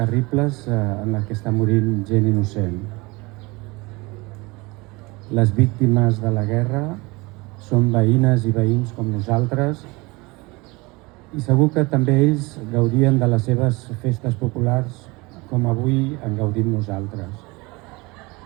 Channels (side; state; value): left; quieter; 24.5 dB